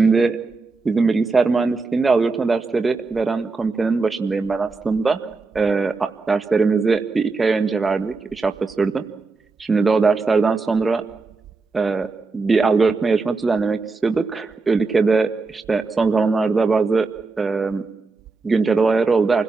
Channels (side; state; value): left; quieter; 4.1 dB